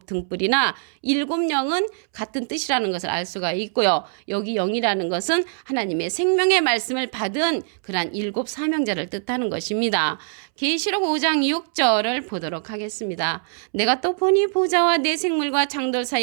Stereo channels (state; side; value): silent; left; 64 dB below the other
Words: 등불이나 일곱 영은 같은 뜻이라는 것을 알 수가 있고요. 여기 영이라는 것은 하나님의 생명의 말씀을 받은 그러한 일곱 사명자를 뜻하는 것입니다. 계시록 5장 6절을 보도록 하겠습니다. 내가 또 보니 보좌와 내 생물과 장돌